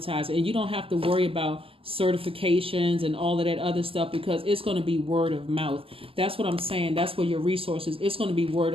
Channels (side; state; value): left; late; 0.26 ms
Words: it. And you don't have to worry about certifications and all of that other stuff, because it's going to be word of mouth. That's what I'm saying. That's where your resources, it's going to be word